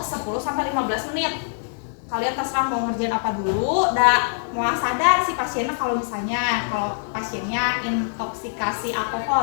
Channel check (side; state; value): right; silent; digital silence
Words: 10 sampai 15 menit. Kalian terserah mau ngerjain apa dulu, mau sadar si pasiennya kalau pasiennya intoksikasi